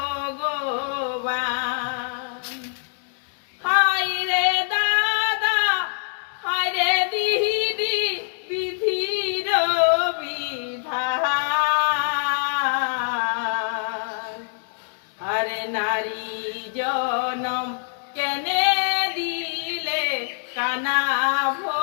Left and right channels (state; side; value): silent; right; digital silence